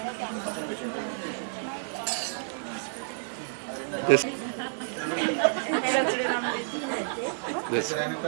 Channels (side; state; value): left; silent; 58 dB below the other